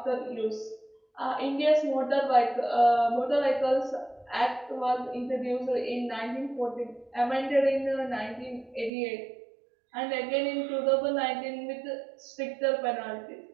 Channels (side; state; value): left; drops out; at 8.9 s